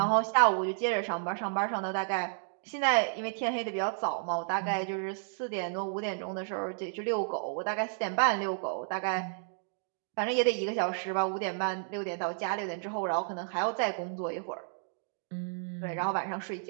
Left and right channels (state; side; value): silent; left; digital silence